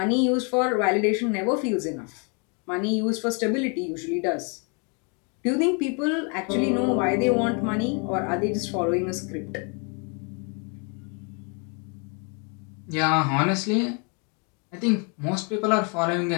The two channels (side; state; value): right; quieter; 36.1 dB